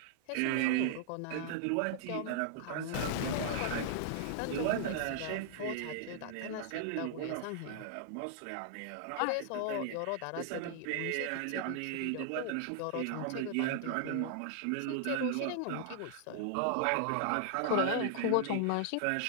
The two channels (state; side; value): different; both; correlation -0.01